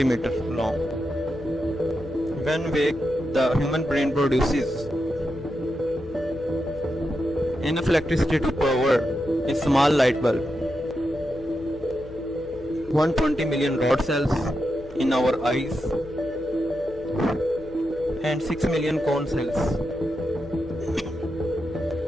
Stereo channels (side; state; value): left; noise; hum, 20 dB below the sound